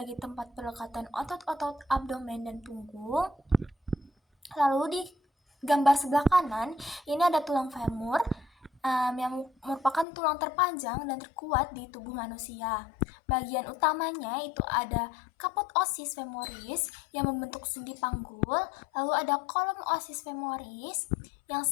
tempat pelekatan otot-otot abdomen dan punggung. Lalu di gambar sebelah kanan ini ada tulang femur yang merupakan tulang terpanjang dan terkuat di tubuh manusia. Bagian utamanya itu ada kaput osis femoris yang membentuk sendi panggul, lalu ada kolom osis femoris yang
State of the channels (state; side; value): drops out; right; at 10.1 s